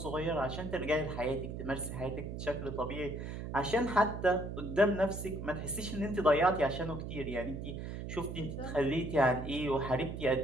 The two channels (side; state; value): right; noise; hum, 6 dB below the sound